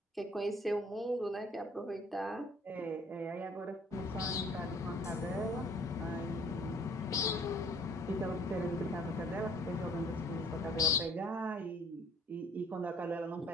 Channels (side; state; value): both; normal; correlation 0.55